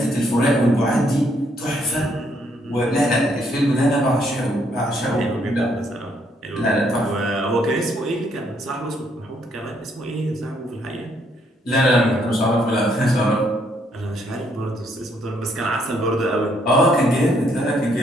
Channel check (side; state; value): both; normal; correlation 0.71